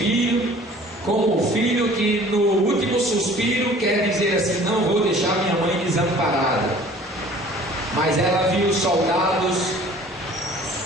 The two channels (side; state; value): both; normal; correlation 0.49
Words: como o filho que no último suspiro quer dizer assim, não vou deixar minha mãe desamparada. Mas ela viu os soldados